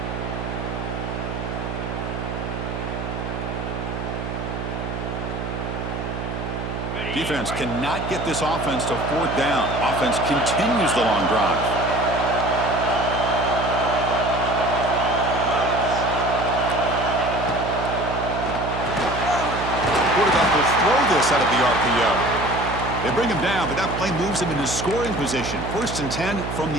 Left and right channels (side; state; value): right; noise; hum, 5 dB below the sound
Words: Defense cannot get this offense to 4th down. Offense continues the long drive. Quarterback will throw this out of the RPO. They bring him down, but that play moves him into scoring position. 1st and 10 from